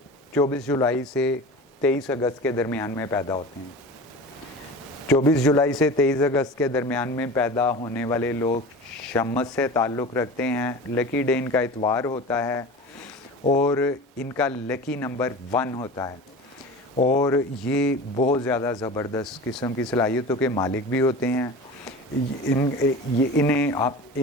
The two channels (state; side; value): normal; both; correlation 0.34